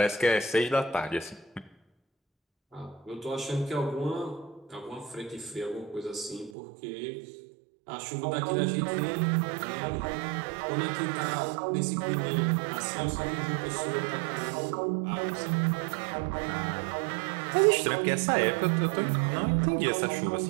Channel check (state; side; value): drops out; left; at 6.5 s